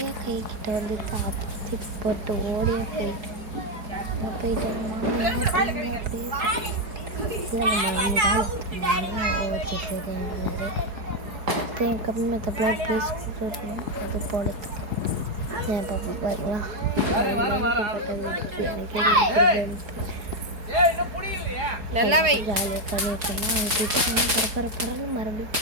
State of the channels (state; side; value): late; left; 4.8 ms